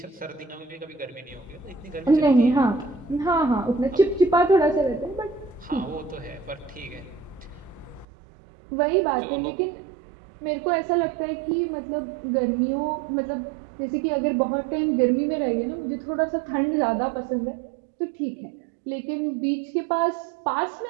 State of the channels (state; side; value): drops out; left; at 8.1 s